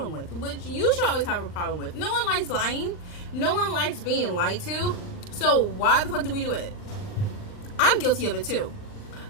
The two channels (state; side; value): late; right; 39 ms